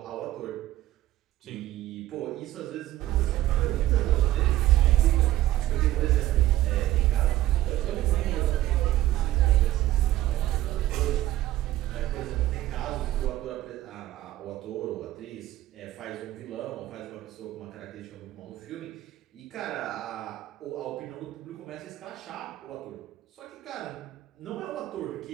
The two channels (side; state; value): left; quieter; 14.7 dB